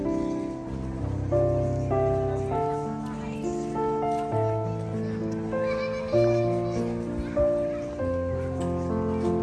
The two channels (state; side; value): identical; both; correlation 1.00